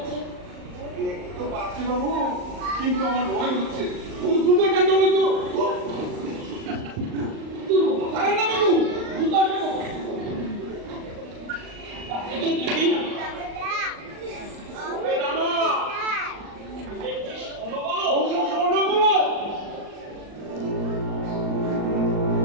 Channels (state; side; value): late; left; 39 ms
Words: আছে। দেখতে তো পাচ্ছি বাবু, কিন্তু আমার ভয় হচ্ছে। দ্রুত কেন বলতো আরে না বাবু, জুতো আসবে কখন?